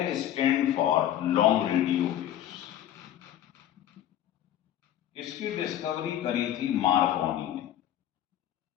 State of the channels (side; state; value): right; quieter; 11.6 dB